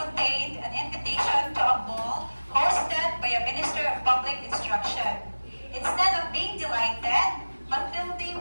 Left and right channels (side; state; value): both; inverted; correlation -1.00